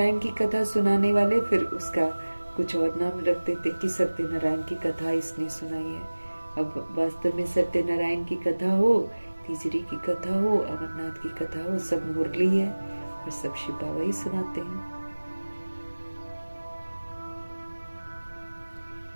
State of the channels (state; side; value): inverted; both; correlation -1.00